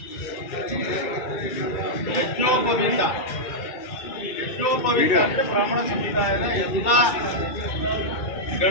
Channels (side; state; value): right; late; 2.3 ms